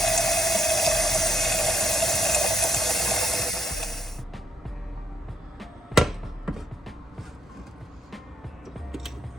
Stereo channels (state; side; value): normal; both; correlation 0.73